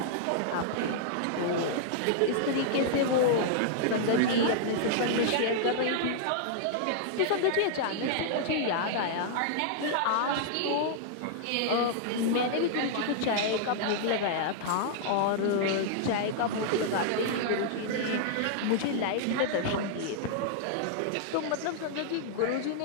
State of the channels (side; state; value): both; different; correlation -0.01